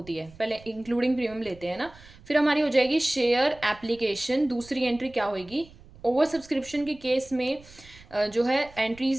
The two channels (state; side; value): noise; right; rumble, 22 dB below the sound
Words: है, पहले इंक्लूडिंग प्रीमियम लेते हैं ना। फिर हमारी हो जाएगी शेयर एप्लीकेशन। दूसरी एंट्री क्या होगी? ओवर सब्सक्रिप्शन के केस में जो है